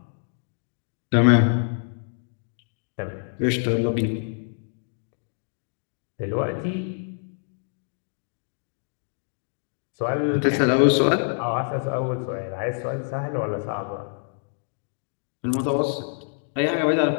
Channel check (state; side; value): silent; right; digital silence